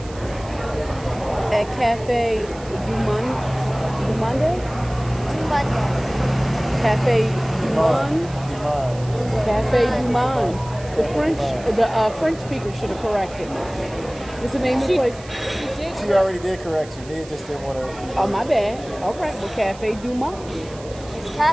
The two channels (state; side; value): noise; right; hiss, 20 dB below the sound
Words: At Cafe Dumont? Monday. Cafe Dumont? Cafe Dumont. The French speaker should have corrected me. What's the name of the place? She already did correct you. Nia just didn't want to. Oh, my bad. All right. Well, Cafe Dumont. It's